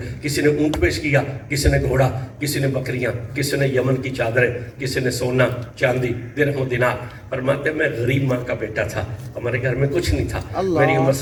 کسی نے اونٹ پیش کیا، کسی نے گھوڑا، کسی نے بکریاں، کسی نے یمن کی چادریں، کسی نے سونا چاندی درہم و دینار۔ فرماتے ہیں میں غریب ماں کا بیٹا تھا، ہمارے گھر میں کچھ نہیں تھا، میری عمر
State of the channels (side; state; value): both; identical; correlation 1.00